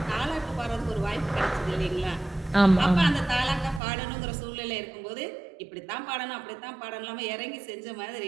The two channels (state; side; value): drops out; left; at 3.8 s